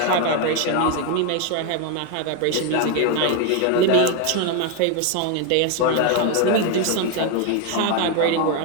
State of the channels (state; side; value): different; both; correlation 0.02